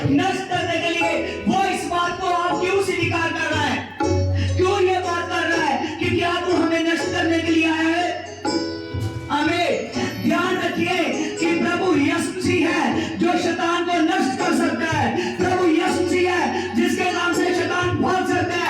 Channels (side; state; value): both; identical; correlation 1.00